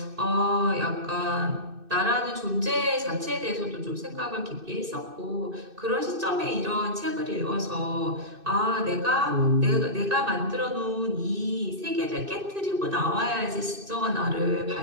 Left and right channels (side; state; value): left; late; 2.6 ms